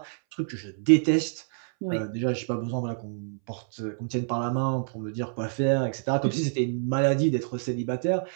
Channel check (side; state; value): left; silent; 60 dB below the other